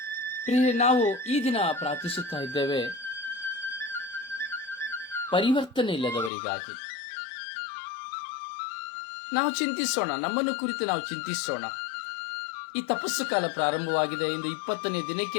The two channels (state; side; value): drops out; right; at 6.3 s